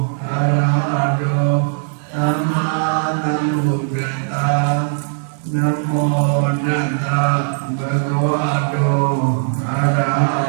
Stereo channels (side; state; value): left; silent; 67 dB below the other